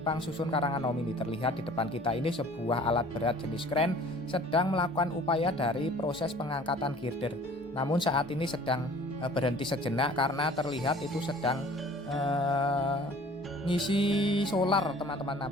susun Karanganom ini. Terlihat di depan kita ini sebuah alat berat jenis kren sedang melakukan upaya dari proses pengangkatan girder. Namun saat ini sedang berhenti sejenak karena terlihat itu sedang ngisi solar teman-teman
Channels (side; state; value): both; normal; correlation 0.49